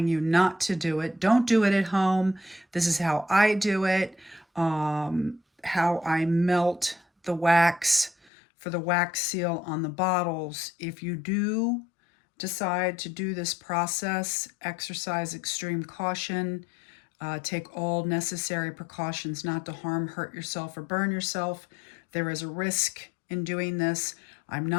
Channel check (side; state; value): right; drops out; at 8.2 s